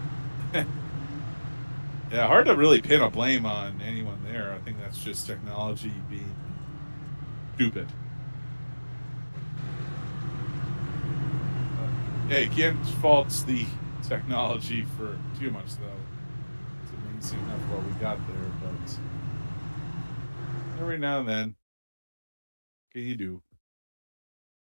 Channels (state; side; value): inverted; both; correlation -1.00